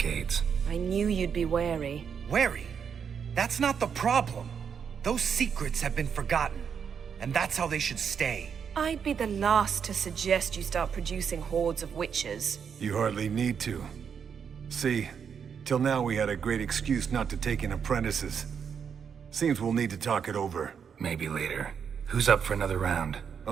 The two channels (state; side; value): quieter; left; 7.1 dB